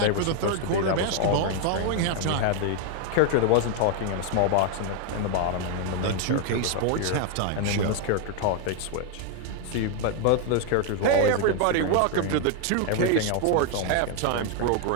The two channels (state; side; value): different; both; correlation 0.01